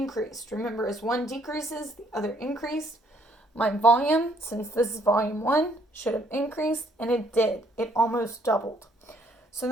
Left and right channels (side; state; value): both; normal; correlation 0.66